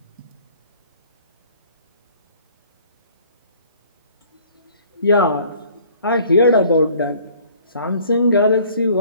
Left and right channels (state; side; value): inverted; both; correlation -0.54